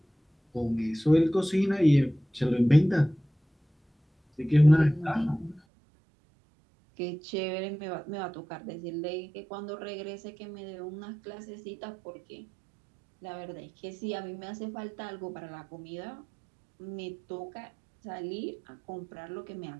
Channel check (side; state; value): left; drops out; at 5.6 s